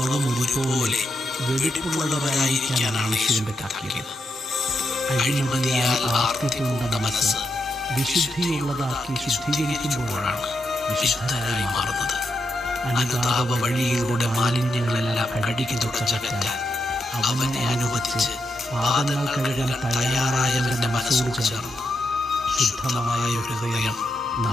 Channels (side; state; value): both; normal; correlation 0.83